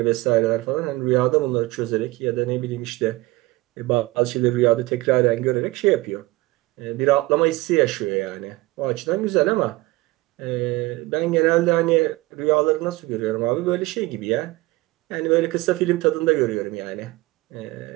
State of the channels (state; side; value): quieter; left; 20.4 dB